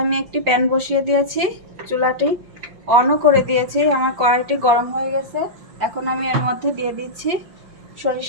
আমি একটি প্যান বসিয়ে দিয়েছি, চুলাটি অনও করে দিয়েছি। আমার কড়াইটি গরম হয়ে গেছে। এখন আমি এর মধ্যে দিয়ে দিচ্ছি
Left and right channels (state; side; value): late; left; 5.7 ms